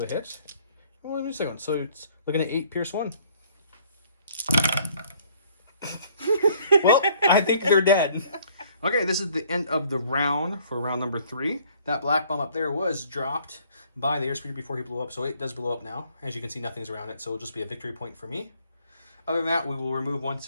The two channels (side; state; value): both; inverted; correlation -0.60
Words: a hit. Well, let me see one. So it's looking at 8 Pierce 1. Well, I think they're dead. Okay, this is the end of the round for round number 3. That black bomb up there was dropped by the airspeeder before he blew up, so it does blow up now. As you can see, nothing's around it, so it'll just be a victory point for me. Other than that, we will remove 1